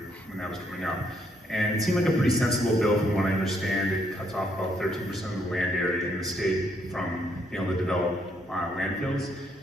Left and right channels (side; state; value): both; normal; correlation 0.72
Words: that was coming up. And it seemed like a pretty sensible bill from what I understand. It cuts off about 13% of the land area in the state from being able to develop landfills.